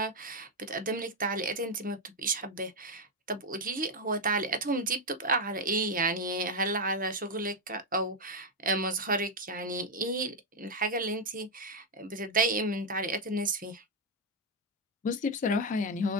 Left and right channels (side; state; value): both; normal; correlation 0.03